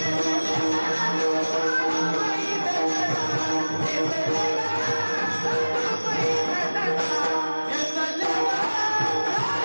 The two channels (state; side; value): inverted; both; correlation -1.00